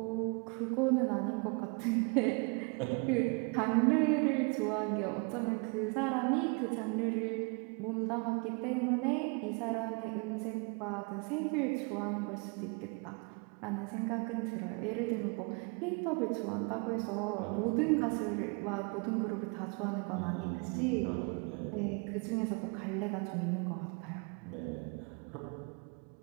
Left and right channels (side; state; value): left; quieter; 33.3 dB